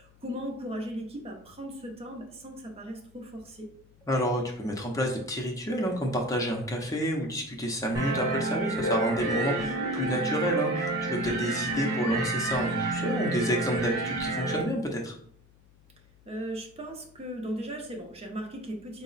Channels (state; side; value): noise; left; hum, 28 dB below the sound